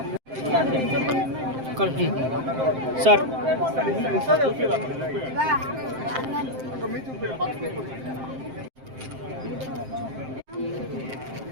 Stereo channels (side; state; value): left; late; 7.6 ms